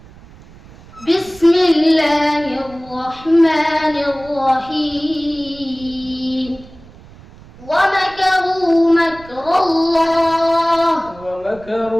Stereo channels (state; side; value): noise; right; rumble, 21 dB below the sound